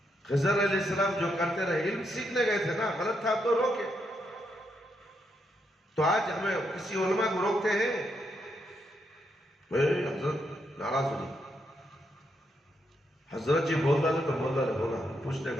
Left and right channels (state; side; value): normal; both; correlation 0.79